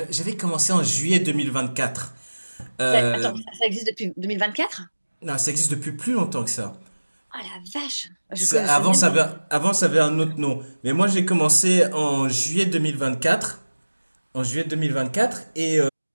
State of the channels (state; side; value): inverted; both; correlation -1.00